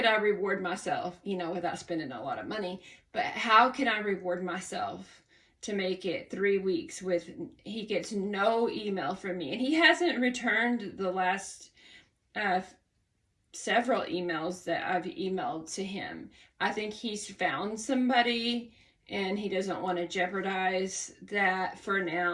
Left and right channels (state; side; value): identical; both; correlation 1.00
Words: I reward myself, without spending a lot of money? But how can I reward myself to make it 3 weeks with, he gets no email from me. And he hasn't returned the last several emails that I've emailed to him. I think he's found somebody and he doesn't want to jeopardize that for